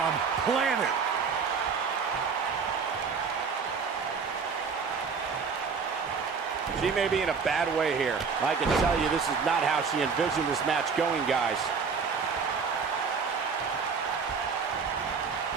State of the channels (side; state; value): left; quieter; 5.5 dB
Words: planted. She may be in a bad way here. I can tell you this is not how she envisioned this match going, guys.